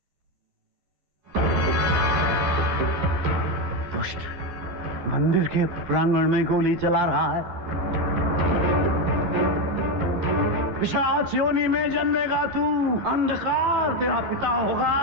दुष्ट मंदिर के प्रांगण में गोली चला रहा है। पिशाच योनि में जन्मेगा तू। अंधकार तेरा पिता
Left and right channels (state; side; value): late; left; 11 ms